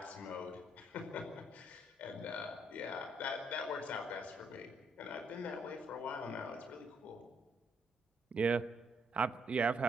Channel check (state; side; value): normal; both; correlation 0.72